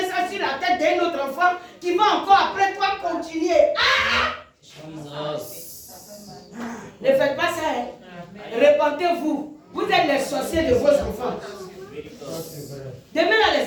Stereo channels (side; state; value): both; identical; correlation 1.00